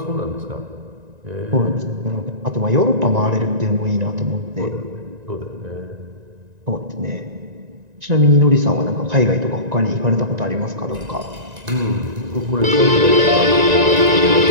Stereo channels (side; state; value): left; late; 1.9 ms